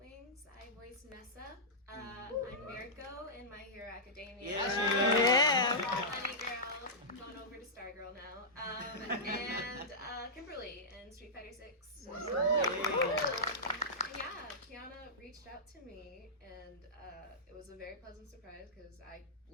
I voice Nessa. I'm Mirko in My Hero Academia. Honey Girl, going over to Stargirl now. And Kimberly in Street Fighter 6. Yeah, Kiana reached out to me, and it was a very pleasant surprise because I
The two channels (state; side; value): normal; both; correlation -0.13